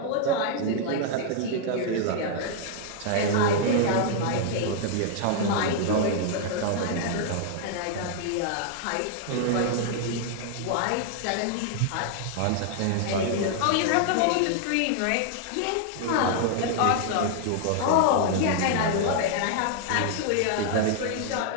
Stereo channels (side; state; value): both; different; correlation 0.00